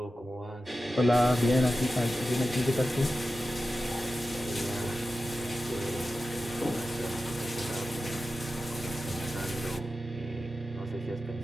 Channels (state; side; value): normal; both; correlation 0.93